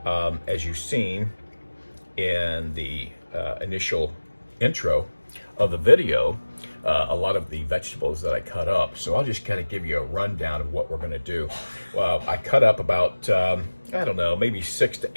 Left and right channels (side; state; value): both; inverted; correlation -1.00